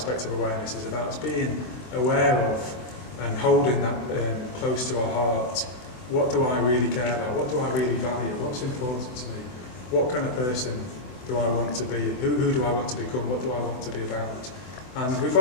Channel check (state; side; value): late; right; 24 ms